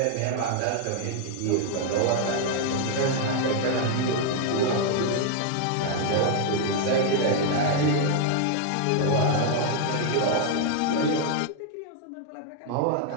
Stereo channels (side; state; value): both; different; correlation 0.00